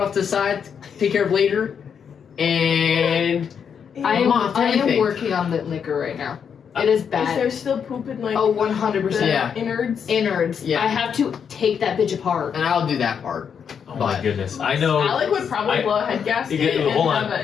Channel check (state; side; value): quieter; right; 7.2 dB